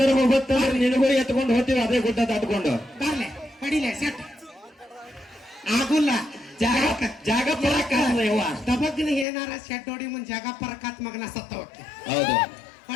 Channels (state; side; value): drops out; right; at 9.2 s